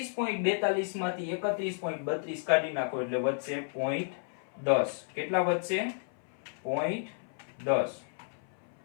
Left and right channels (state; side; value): silent; right; 56 dB below the other